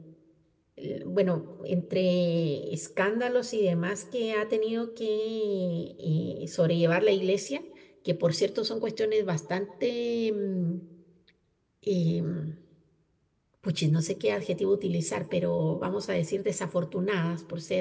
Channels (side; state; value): both; identical; correlation 1.00